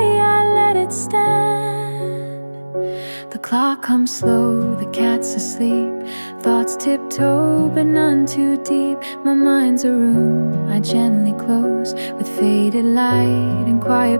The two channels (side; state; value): both; inverted; correlation -1.00